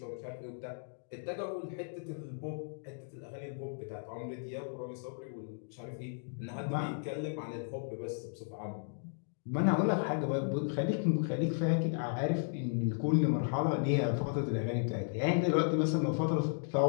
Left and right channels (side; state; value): right; silent; digital silence